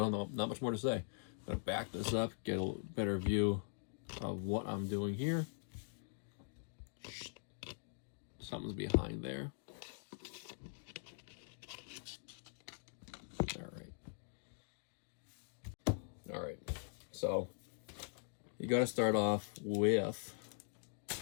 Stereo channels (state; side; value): silent; right; digital silence